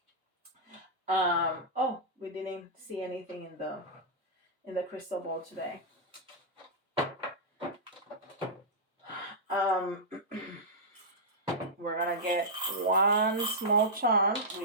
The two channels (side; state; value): both; normal; correlation -0.10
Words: Oh, we didn't see anything in the crystal ball today. We're gonna get one small charm. We